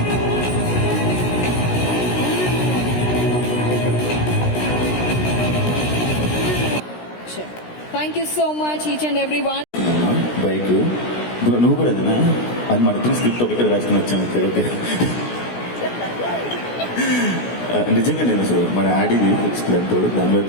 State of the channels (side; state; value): right; late; 16 ms